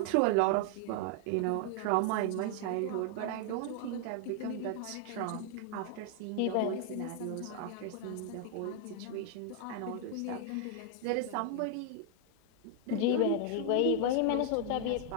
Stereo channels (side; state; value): both; different; correlation 0.00